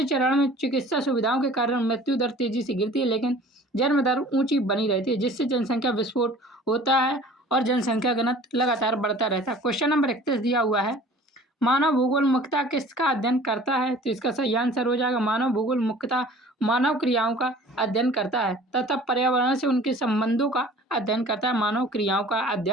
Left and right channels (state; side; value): normal; both; correlation 0.47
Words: चरण में चिकित्सा सुविधाओं के कारण मृत्यु दर तेजी से गिरती है, लेकिन जन्म दर ऊंची बनी रहती है, जिससे जनसंख्या विस्फोट होता है और जनसंख्या घनत्व लगातार बढ़ता रहता है। क्वेश्चन नंबर 31 दिया हुआ है, मानव भूगोल मुख्यतः किसका अध्ययन करता है? तो इसका सही आंसर हो जाएगा मानव भूगोल मुख्यतः मानव क्रियाओं का अध्ययन करता है तथा पर्यावरण से उनके संबंधों का अध्ययन करता है। मानव क्रियाओं का